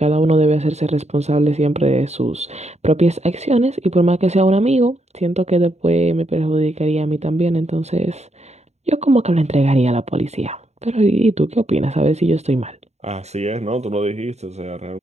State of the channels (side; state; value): left; late; 0.32 ms